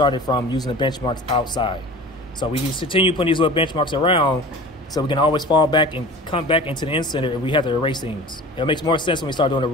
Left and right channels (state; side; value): normal; both; correlation 0.39